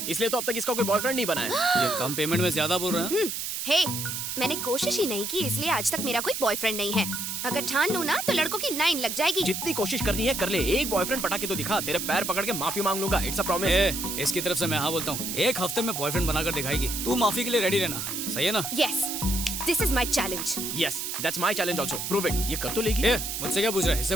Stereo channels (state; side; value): noise; right; hiss, 4 dB below the sound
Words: इसलिए तो अब तक इसका कोई बॉयफ्रेंड नहीं बना है। ये कम पेमेंट में ज्यादा बोल रहा है। हे, मैंने कोशिश ही नहीं की इसलिए आज तक मेरा कोई बॉयफ्रेंड नहीं है। अगर ठान लूं ना तो लड़कों की लाइन लग जाएगी। जितनी कोशिश करनी है कर ले, एक बॉयफ्रेंड पटा के तो दिखा, तेरे पैर पकड़ के माफी मांग लूंगा, इट्स अ प्रॉमिस। इसकी तरफ से मैं हाँ बोलता हूँ, एक हफ्ते में बॉयफ्रेंड बनाकर दिखाएगी। तू माफी के लिए रेडी रहना, सही है ना? Yes, this is my challenge. Yes that's my challenge also, prove it. ये कर तो लेगी। मुझसे क्या पूछ रहा है, इससे